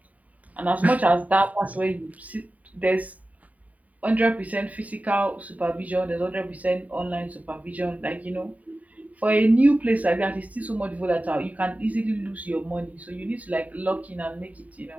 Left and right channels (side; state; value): left; late; 0.071 ms